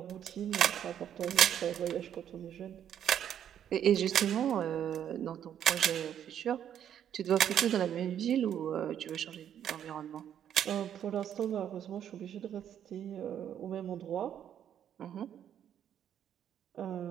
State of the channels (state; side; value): quieter; left; 9.7 dB